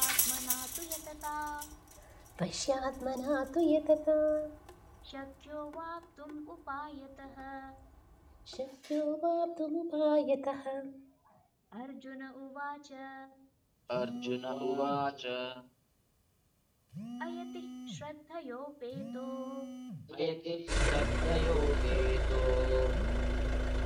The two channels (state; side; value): identical; both; correlation 1.00